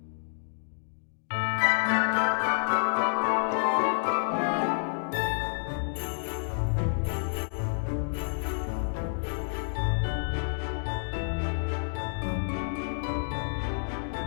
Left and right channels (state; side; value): silent; right; digital silence